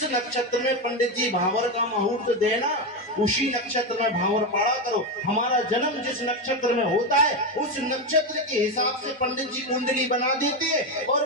नक्षत्र में पंडित जी भावर का मुहूर्त देना, उसी नक्षत्र में भावर पड़ा करो। हमारा जन्म जिस नक्षत्र में होता है उस नक्षत्र के हिसाब से पंडित जी कुंडली बना देते हैं और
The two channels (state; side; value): normal; both; correlation 0.12